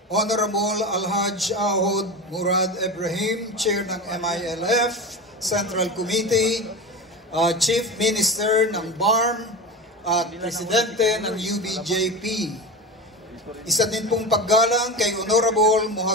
Honorable Alhaj Ahod Murad Ibrahim, Chair ng MILF Central Committee, Chief Minister ng BARM at Presidente ng UBJP. Isa din pong paggalang kay Honorable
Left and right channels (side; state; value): both; normal; correlation 0.25